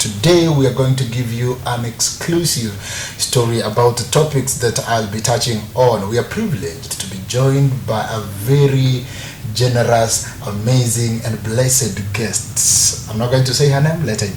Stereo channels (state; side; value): identical; both; correlation 1.00